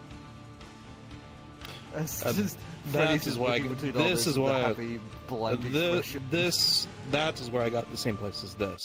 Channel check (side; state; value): both; identical; correlation 1.00